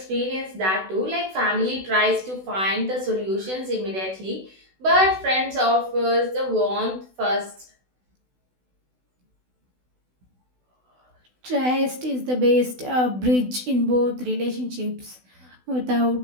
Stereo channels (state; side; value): late; left; 16 ms